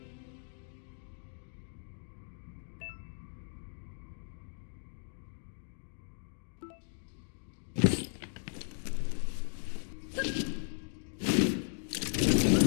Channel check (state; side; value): silent; right; digital silence